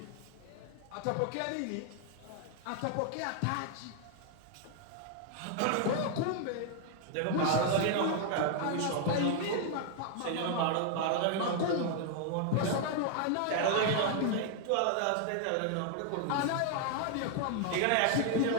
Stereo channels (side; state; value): both; different; correlation 0.00